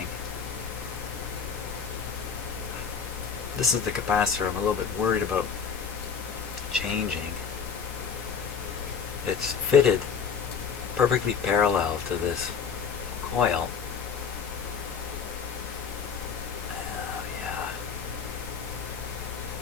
This is the capacitor I'm a little bit worried about changing. It's fitted perfectly parallel to this coil. Oh, yeah.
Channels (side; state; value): right; quieter; 6.5 dB